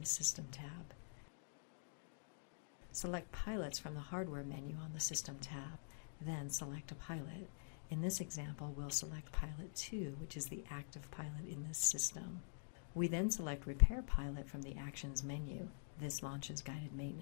System tab. Select Pilots from the Hardware menu on the System tab, then select a pilot. In this example, we'll select Pilot 2, which is the active pilot in this system. We then select Repair Pilot from the Actions menu. This launches guided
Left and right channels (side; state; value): right; silent; digital silence